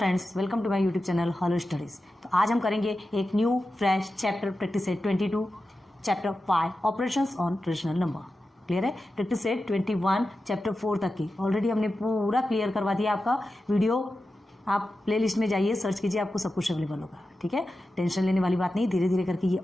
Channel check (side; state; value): both; normal; correlation 0.92